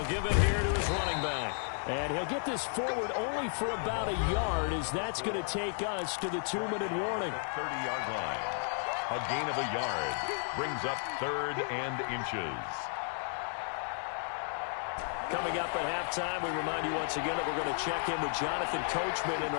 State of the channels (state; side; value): silent; right; 56 dB below the other